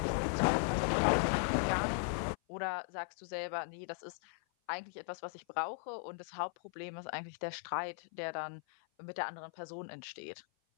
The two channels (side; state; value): right; silent; 52 dB below the other